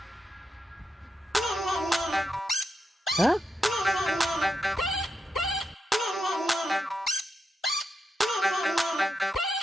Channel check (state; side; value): normal; both; correlation 0.86